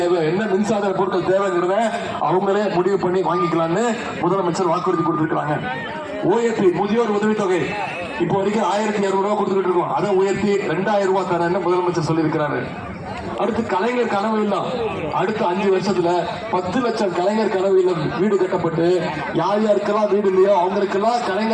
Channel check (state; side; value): identical; both; correlation 1.00